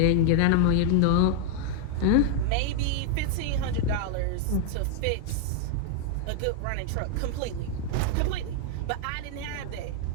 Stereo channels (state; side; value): different; both; correlation 0.00